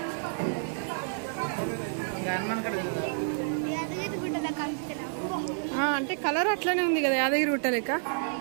అంటే కలర్ అట్లనే ఉంది కదా, యాదగిరి గుట్ట లెక్క.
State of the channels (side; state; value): left; silent; digital silence